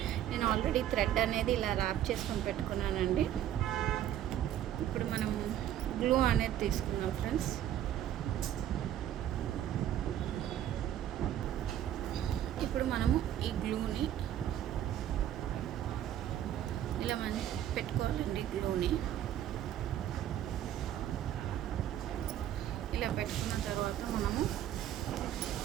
నేను ఆల్రెడీ థ్రెడ్ అనేది ఇలా ర్యాప్ చేసుకొని పెట్టుకున్నానండి. ఇప్పుడు మనం గ్లూ అనేది తీసుకున్నాం ఫ్రెండ్స్. ఇప్పుడు మనము ఈ గ్లూని ఇలా మనం పెట్టుకోవాలండి. గ్లూని ఇలా పెట్టుకున్న తర్వాత మనము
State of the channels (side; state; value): left; quieter; 11.3 dB